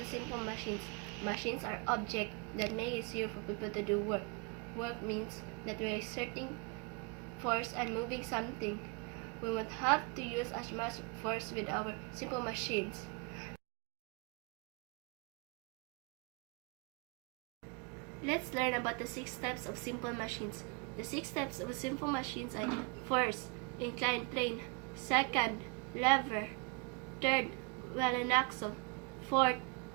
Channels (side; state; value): left; quieter; 31.5 dB